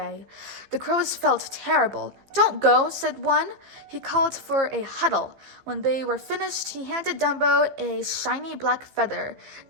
The crows felt terrible. Don't go, said one. He called for a huddle. When they were finished, he handed Dumbo a shiny black feather.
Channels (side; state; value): left; late; 15 ms